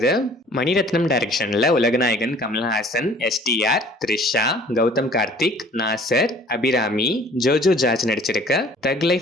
மணிரத்னம் டைரக்ஷன்ல உலகநாயகன் கமல்ஹாசன், STR, த்ரிஷா, கௌதம் கார்த்திக், நாசர், அபிராமி, ஜோஜோ ஜார்ஜ் நடிச்சிருக்க தக்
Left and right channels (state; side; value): normal; both; correlation 0.52